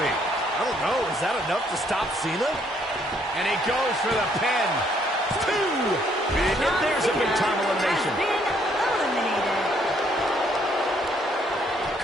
I don't know. Is that enough to stop Cena? And he goes for the pin. 2. And there's a big-time elimination. Been eliminated.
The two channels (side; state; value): both; normal; correlation 0.68